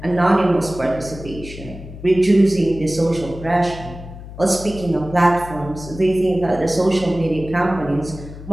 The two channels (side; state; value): left; noise; hum, 13 dB below the sound